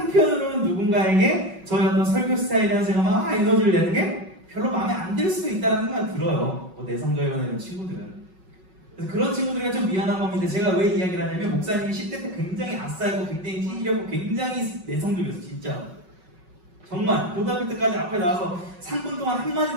누군가에게 저희 어떤 설교 스타일이라는 제가 막 에너지를 내는 게 별로 마음에 안 들 수도 있다는 생각이 들어요. 뭐 내성적이라는 친구들은. 그래서 그런 친구들이 좀 미안한 겁니다. 제가 왜 이야기를 하냐면 목사님이 10대 때 굉장히 아싸이고 굉장히 찌질하고 굉장히 내성적이었어요. 진짜. 정말 고등학교 때까지 앞에 나와서 3분 동안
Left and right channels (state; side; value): late; left; 5.4 ms